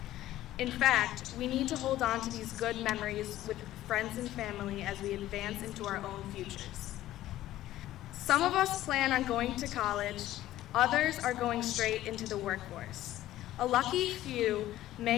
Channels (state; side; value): quieter; right; 14.3 dB